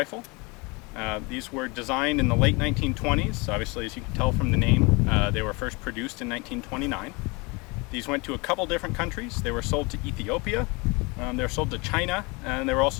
These were designed in the late 1920s. Obviously, as you can tell from the name, they were first produced in 1929. These went to a couple different countries. They were sold to Ethiopia, they were sold to China, and they were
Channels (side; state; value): right; quieter; 27.5 dB